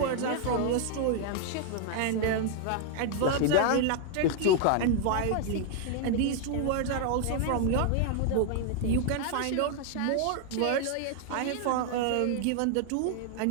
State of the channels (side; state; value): both; different; correlation 0.00